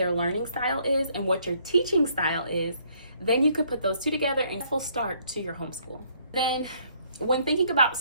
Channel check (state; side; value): inverted; both; correlation -0.65